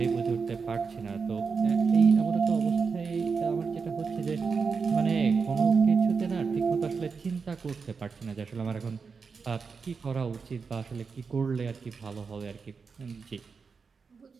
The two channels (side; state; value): left; quieter; 5.3 dB